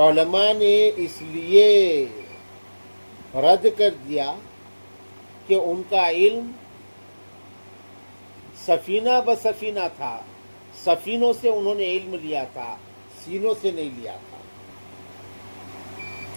نے اس لیے رد کر دیا کہ ان کا علم سفینہ بسفینہ تھا، سفینوں سے انہوں نے علم لیا تھا، سینوں سے نہیں لیا تھا۔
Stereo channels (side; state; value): both; inverted; correlation -1.00